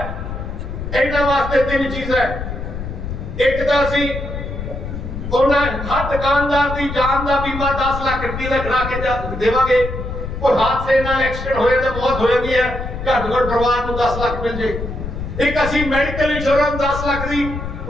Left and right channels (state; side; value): noise; left; rumble, 7 dB below the sound